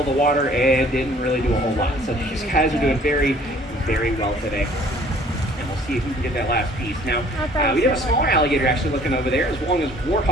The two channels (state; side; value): normal; both; correlation 0.55